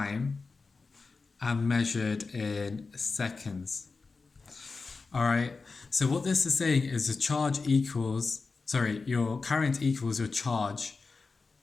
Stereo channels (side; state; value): right; quieter; 4.2 dB